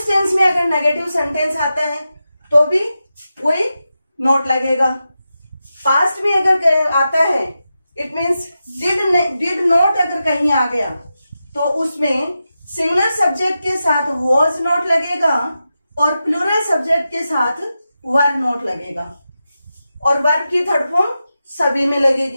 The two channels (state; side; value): inverted; both; correlation -0.90